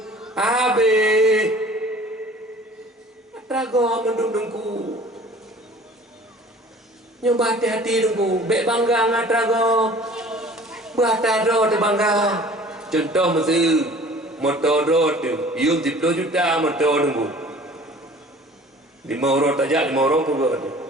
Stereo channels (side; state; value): both; normal; correlation 0.47